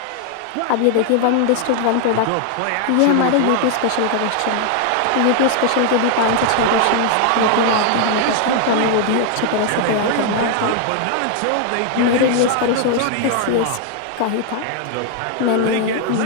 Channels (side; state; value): both; different; correlation 0.00